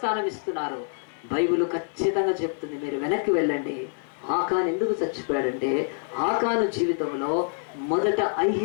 ఇస్తున్నారు. బైబిల్ ఖచ్చితంగా చెప్తుంది. మీరు వెనక్కి వెళ్ళండి. ఆకాను ఎందుకు చచ్చిపోయాడంటే ఆకాను జీవితంలో మొదట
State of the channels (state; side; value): silent; right; 60 dB below the other